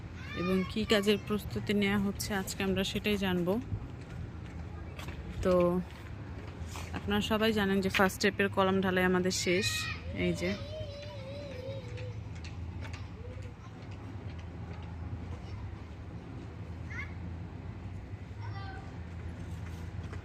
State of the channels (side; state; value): both; identical; correlation 1.00